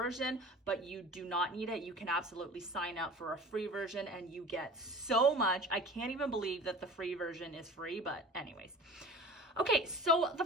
but you do not need it. You can absolutely sign up for a free version and you get so much. I can't even believe that the free version is free, but anyways. Okay, so the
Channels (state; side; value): normal; both; correlation 0.40